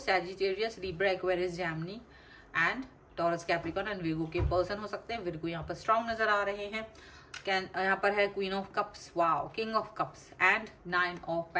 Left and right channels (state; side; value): identical; both; correlation 1.00